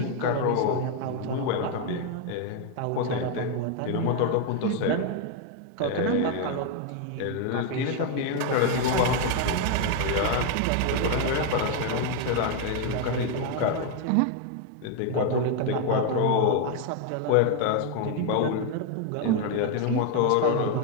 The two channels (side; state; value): both; different; correlation 0.01